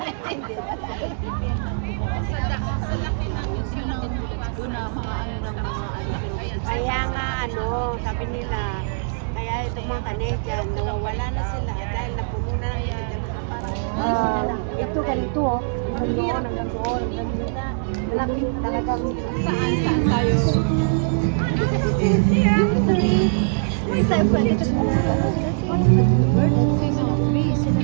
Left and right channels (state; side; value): silent; left; digital silence